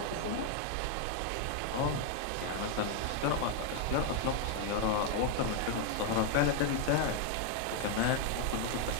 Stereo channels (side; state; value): both; different; correlation 0.00